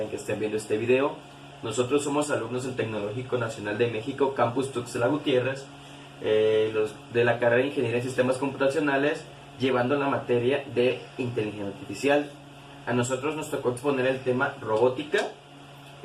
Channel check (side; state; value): both; identical; correlation 1.00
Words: en que estén viendo este video. Nosotros somos alumnos del Tecnológico Nacional de México, Campus Tuxtla Gutiérrez, los de la carrera de Ingeniería en Sistemas Computacionales, llevando la materia de Inteligencia Artificial. A nosotros nos tocó exponer el tema robótica.